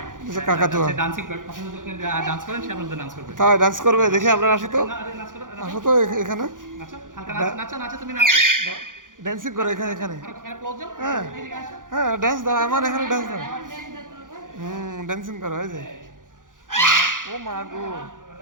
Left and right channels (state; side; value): late; left; 0.89 ms